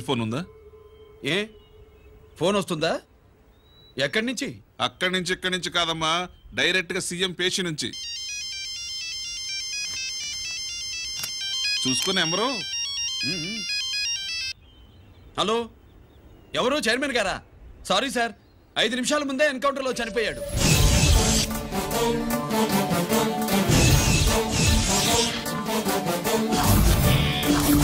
ఫోన్ ఉందా? ఏ ఫోన్ వస్తుందా? ఎక్కడి నుంచి? అక్కడి నుంచి ఇక్కడి నుంచి కాదమ్మా, డైరెక్ట్ గా సీఎం పేషి నుంచి. చూసుకుని ఎవరు? హలో, ఎవరు? చైర్మన్ గారా? సారీ సార్, 5 నిమిషాల ముందే ఎన్కౌంటర్లో చనిపోయాడు.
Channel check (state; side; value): identical; both; correlation 1.00